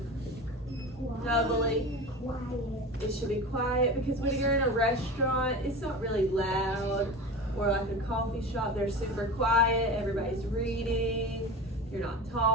Doubly. It should be quiet because when you're in a restaurant, it's not really loud. Or like a coffee shop, they're super quiet. Everybody's reading. You're not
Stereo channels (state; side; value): normal; both; correlation 0.30